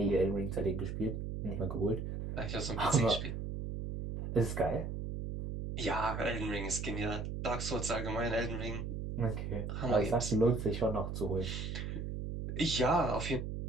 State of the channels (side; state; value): right; noise; hum, 4 dB below the sound